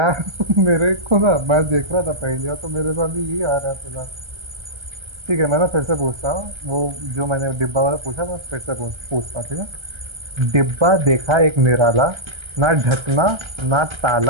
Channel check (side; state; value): left; late; 1.3 ms